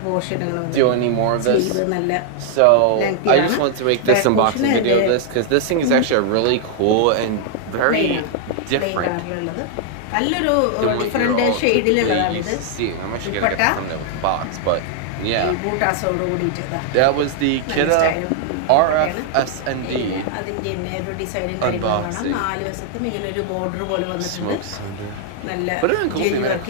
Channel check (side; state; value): both; different; correlation 0.00